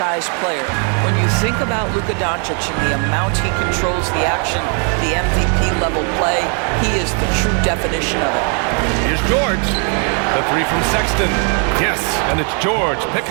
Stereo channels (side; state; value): left; quieter; 39.7 dB